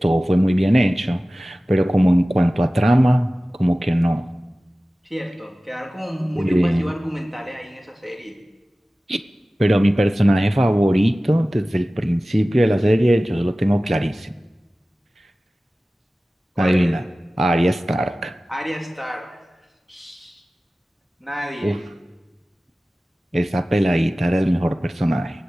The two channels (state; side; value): normal; both; correlation 0.97